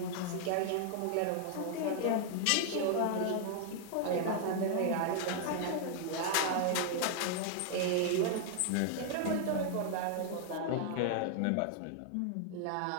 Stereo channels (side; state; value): both; different; correlation 0.00